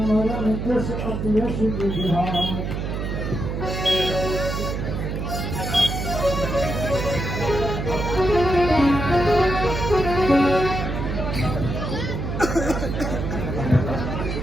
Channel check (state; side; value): noise; right; hum, 3 dB below the sound